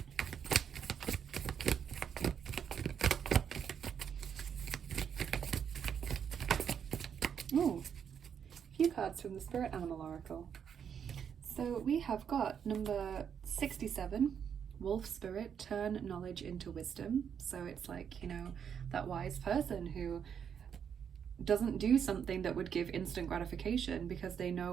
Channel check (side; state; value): left; quieter; 7.8 dB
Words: Oh, a few cards from the Spirit Animal Oracle. So we have got number 67, Wolf Spirit, turn knowledge into wisdom. So it's like, you know, that wise person who doesn't do something that would give instant gratification because they